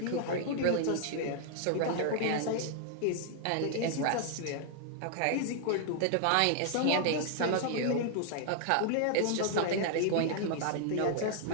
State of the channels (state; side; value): different; both; correlation 0.00